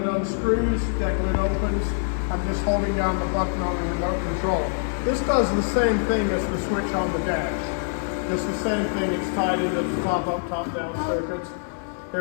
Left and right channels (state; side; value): silent; right; 62 dB below the other